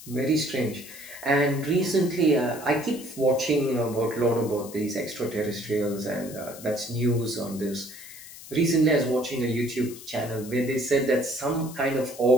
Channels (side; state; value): left; noise; hiss, 16 dB below the sound